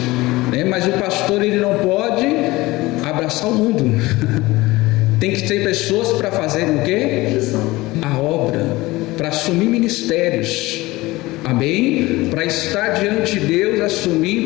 né? Mas o pastor, ele não pode abraçar o mundo. Tem que ter pessoas para fazer o quê? A obra, para assumir ministérios, amém? Para estar diante de Deus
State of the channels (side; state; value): right; quieter; 20.0 dB